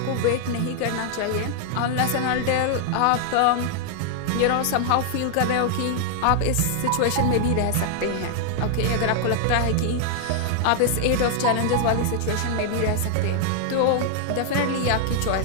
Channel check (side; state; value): both; different; correlation 0.00